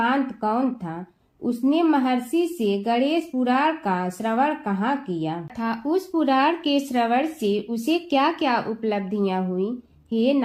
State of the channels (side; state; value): both; identical; correlation 1.00